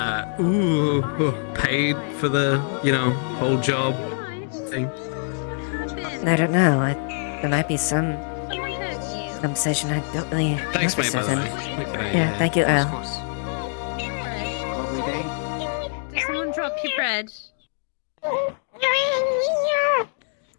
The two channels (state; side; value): silent; right; digital silence